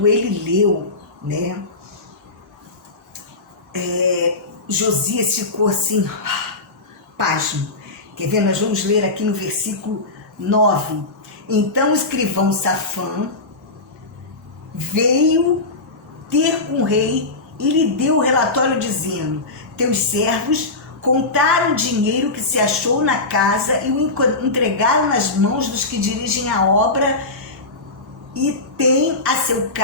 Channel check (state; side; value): quieter; right; 3.2 dB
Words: ele leu, né, Josias ficou assim, pasmo. Quer ver? Nós vamos ler aqui no versículo 9. Então o escrivão Safã veio ter com o rei e lhe deu o relatório dizendo: teus servos contaram o dinheiro que se achou na casa e o entregaram nas mãos dos que dirigem a obra e têm a seu